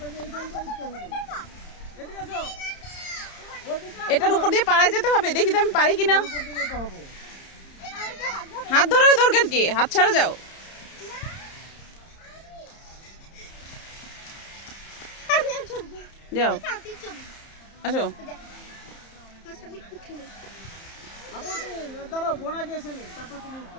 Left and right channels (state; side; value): late; right; 30 ms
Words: যে এইখান দিয়ে উঠতে হবে। এদিকে আসো, এদিকে এটার উপর দিয়ে পাড়ায় যেতে হবে, দেখি তো আমি পারি কিনা। করতে যেতে হবে। হাত ধরার দরকার কি, হাত ছাড়া যাও। আমি আর চলবো। যাও, সাথে চলবো। আসো। ফার্স্ট আমি উঠে নিই। আপু তুমি দাঁড়াও, বোনা গিয়েছে নি, তারপর তুমি